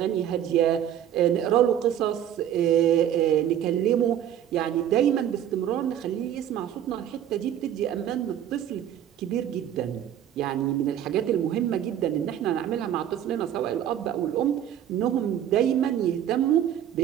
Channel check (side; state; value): left; quieter; 10.4 dB